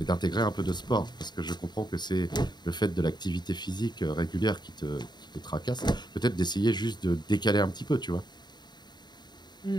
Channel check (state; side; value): late; right; 0.21 ms